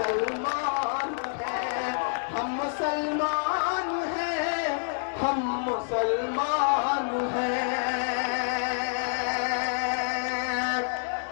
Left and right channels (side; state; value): right; silent; digital silence